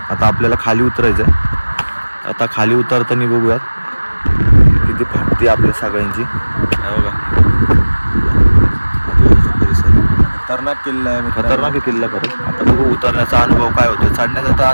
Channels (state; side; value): inverted; both; correlation -1.00